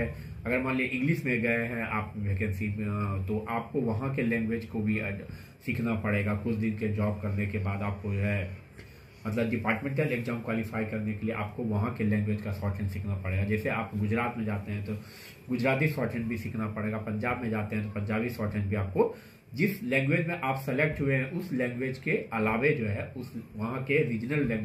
अगर मान लीजिए इंग्लिश में गए हैं आप वैकेंसी में, तो आपको वहाँ के लैंग्वेज को भी सीखना पड़ेगा। कुछ दिन के जॉब करने के बाद आपको जो है मतलब डिपार्टमेंटल एग्जाम क्वालिफाई करने के लिए आपको वहाँ के लैंग्वेज का शॉर्ट हैंड सीखना पड़ेगा। जैसे आप गुजरात में जाते हैं तो गुजराती शॉर्ट हैंड भी सीखना पड़ेगा, पंजाब में जाते हैं तो पंजाबी शॉर्ट हैंड भी आपको, जिस लैंग्वेज में आप सेलेक्ट हुए हैं उस लैंग्वेज के अलावे जो है उस वहाँ के रीजनल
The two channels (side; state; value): both; identical; correlation 1.00